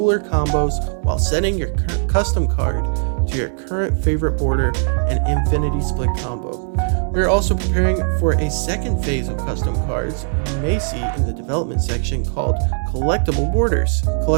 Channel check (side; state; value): left; silent; 66 dB below the other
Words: combos while setting your custom card to your current favorite border and infinity split combo. We are also preparing for a second phase of custom cards you may see in the development section called Collectible Borders.